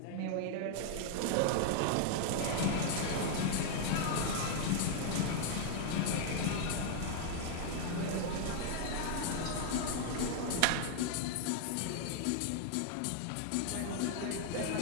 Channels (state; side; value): different; both; correlation 0.00